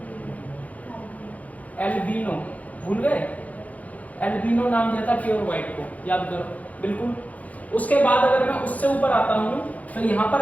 एल्बिनो, भूल गए? एल्बिनो नाम दिया था प्योर व्हाइट को, याद करो बिल्कुल। उसके बाद अगर मैं उससे ऊपर आता हूं तो यहां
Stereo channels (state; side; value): late; right; 0.072 ms